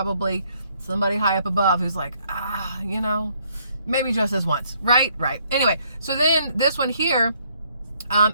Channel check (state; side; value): inverted; both; correlation -0.68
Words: somebody high up above who's like, you know, maybe just this once, right? Anyway, so then this one here,